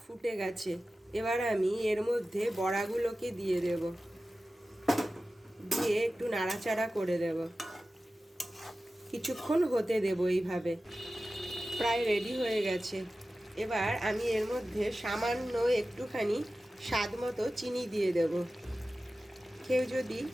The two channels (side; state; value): both; normal; correlation 0.95